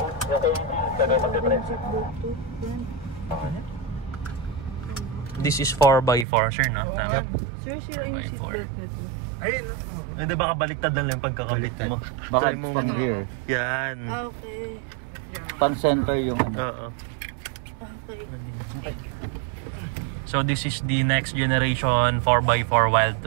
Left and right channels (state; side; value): drops out; left; at 6.2 s